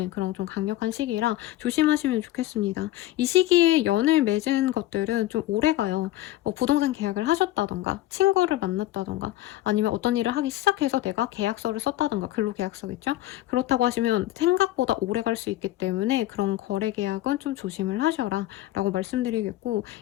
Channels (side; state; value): right; quieter; 15.2 dB